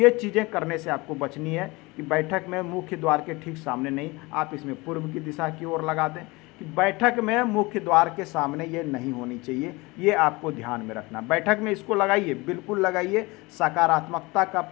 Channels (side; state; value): right; quieter; 23.7 dB